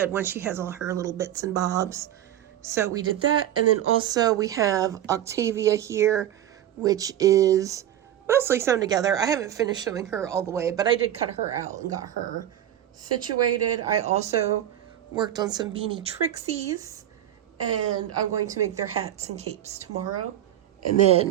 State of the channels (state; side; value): quieter; left; 11.7 dB